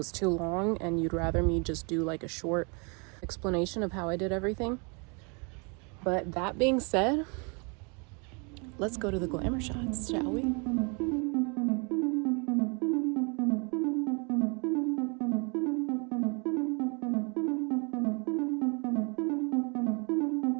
too long and you'd rather me just do like a short explanation of how I did everything. But that being said, let's go to the glamour shots, shall we?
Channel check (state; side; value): quieter; left; 33.8 dB